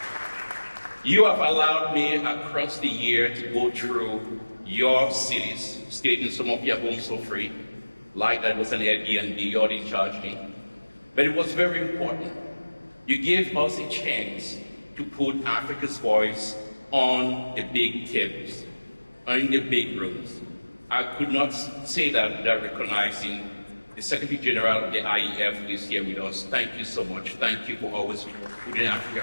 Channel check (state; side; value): inverted; both; correlation -1.00